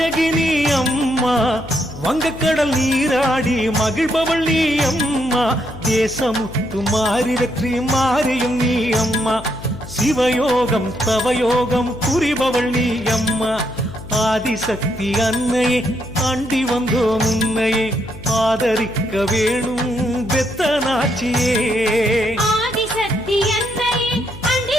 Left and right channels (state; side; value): noise; left; hum, 15 dB below the sound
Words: அம்மா, வங்கக்கடல் நீராடி மகிழ்பவள் நீ அம்மா, தேசமுத்து மாறி வெற்றி மாறியும் நீ அம்மா, சிவயோகம் தவயோகம் புரிபவள் நீ அம்மா, ஆதிசக்தி அன்னையே அண்டி வந்தோ முன்னையே, ஆதரிக்க வேணும் பெத்தனாச்சியே. ஆதிசக்தி அன்னையே